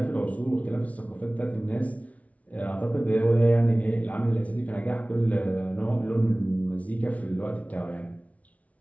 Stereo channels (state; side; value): late; right; 0.067 ms